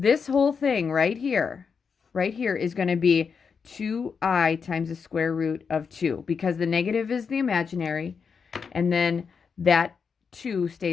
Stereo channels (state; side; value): quieter; right; 5.9 dB